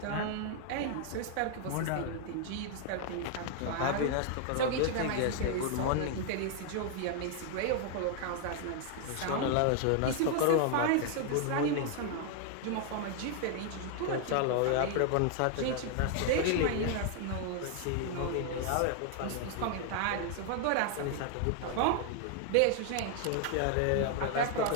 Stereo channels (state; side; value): different; both; correlation 0.00